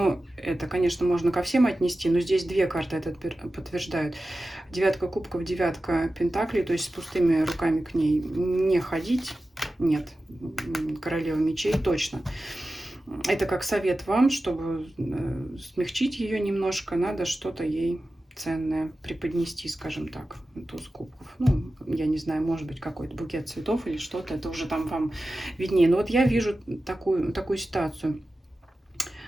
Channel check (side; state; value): both; normal; correlation 0.94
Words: это, конечно, можно ко всем отнести, но здесь две карты это подтверждают. Девятка кубков, девятка пентаклей, то есть с пустыми руками к ней не ходить. Нет, королева мечей точно. Это как совет вам, чтобы смягчить ее немножко, надо что-то ей ценное преподнести, скажем так, туз кубков. Ну, я не знаю, может быть, какой-то букет цветов или что-то, это уже там вам виднее. Но вот я вижу такую ситуацию.